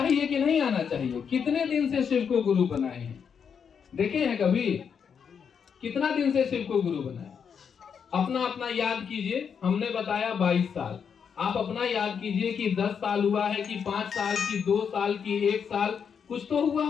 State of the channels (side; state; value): right; quieter; 7.0 dB